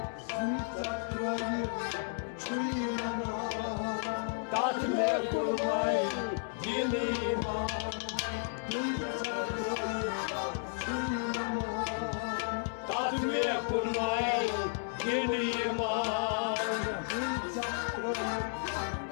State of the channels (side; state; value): right; silent; 56 dB below the other